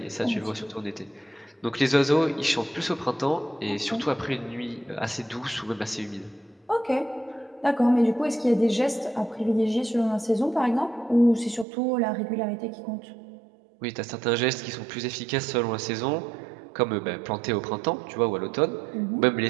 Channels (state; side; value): drops out; left; at 11.7 s